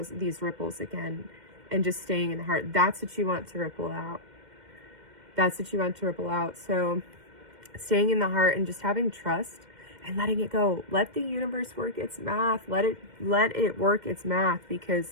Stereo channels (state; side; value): late; left; 2.1 ms